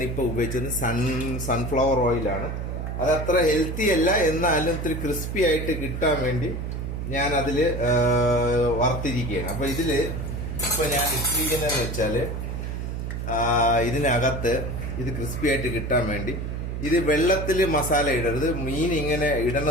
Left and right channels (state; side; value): noise; right; hum, 4 dB below the sound